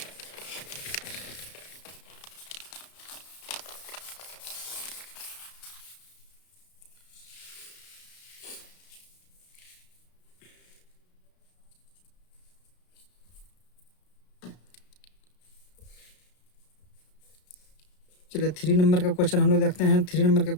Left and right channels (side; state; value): right; late; 33 ms